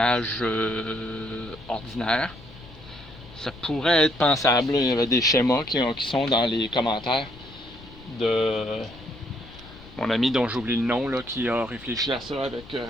ordinaire, ça pourrait être pensable. Il y avait des schémas qui sont dans les commentaires de mon ami dont j'oublie le nom là, qui a réfléchi à ça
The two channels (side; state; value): left; noise; rumble, 19 dB below the sound